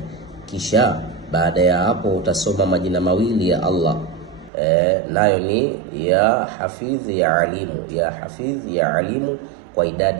Kisha baada ya hapo utasoma majina mawili ya Allah, nayo ni ya Hafidh ya Alimu, ya Hafidh ya Alimu kwa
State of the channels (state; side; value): drops out; left; at 4.5 s